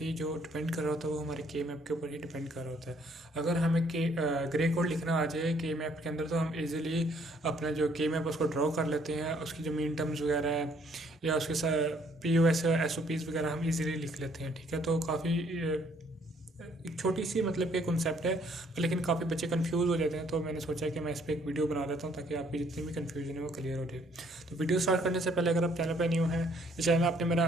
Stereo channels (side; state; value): both; normal; correlation 0.64